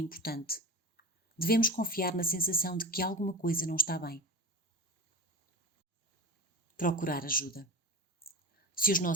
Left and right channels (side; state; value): both; normal; correlation 0.28